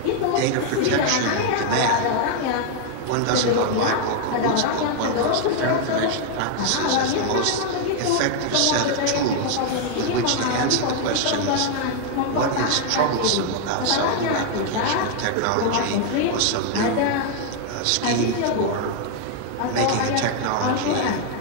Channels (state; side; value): different; both; correlation 0.00